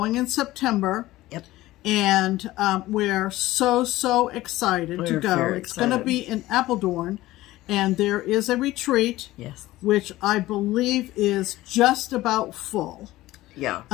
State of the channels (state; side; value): quieter; right; 17.0 dB